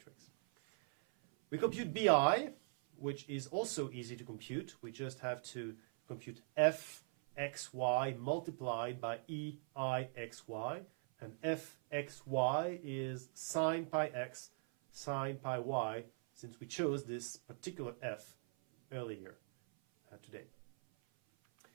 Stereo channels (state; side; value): silent; left; 50 dB below the other